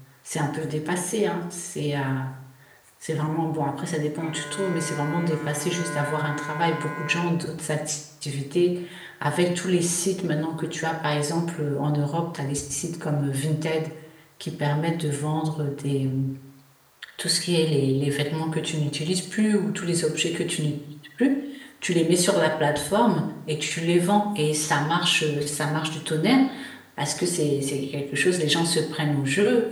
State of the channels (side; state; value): both; identical; correlation 1.00